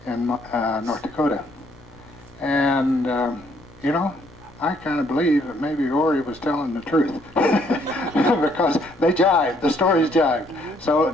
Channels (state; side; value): noise; left; rumble, 29 dB below the sound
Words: Dakota. And, you know, I kind of believe that maybe Ori was telling the truth because they jived, the stories jived. So